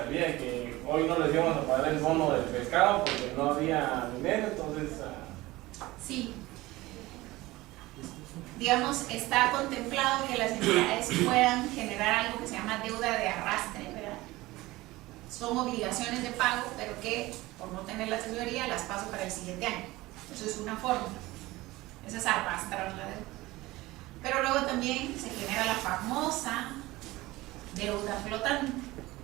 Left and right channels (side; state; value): left; quieter; 19.2 dB